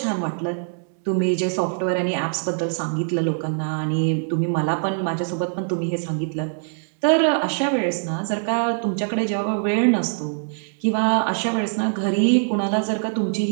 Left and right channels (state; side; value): silent; left; digital silence